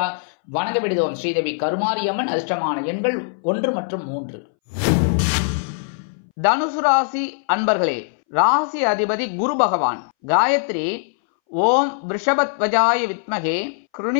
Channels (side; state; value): right; silent; 64 dB below the other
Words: வணங்க விடுதோம் ஸ்ரீதேவி கருமாரியம்மன். அதிர்ஷ்டமான எண்கள் 1 மற்றும் 3. தனுசு ராசி அன்பர்களே, ராசி அதிபதி குரு பகவான். காயத்ரி ஓம் விருஷபத்வஜாய வித்மகே